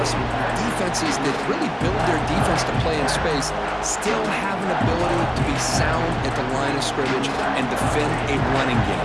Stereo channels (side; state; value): both; identical; correlation 1.00